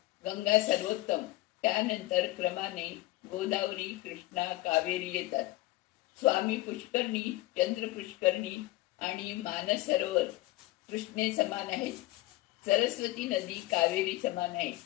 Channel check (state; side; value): quieter; right; 18.2 dB